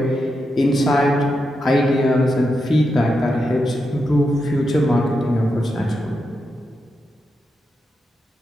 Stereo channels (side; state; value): both; normal; correlation 0.86